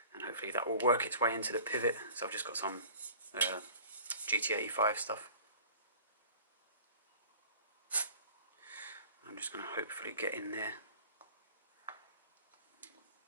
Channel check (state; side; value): inverted; both; correlation -0.45